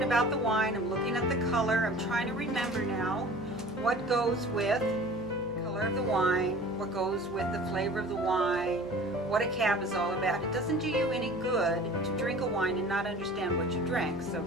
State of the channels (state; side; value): noise; left; hum, 21 dB below the sound